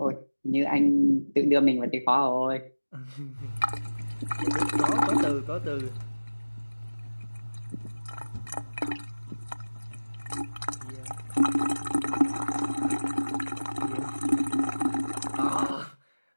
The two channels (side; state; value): both; inverted; correlation -1.00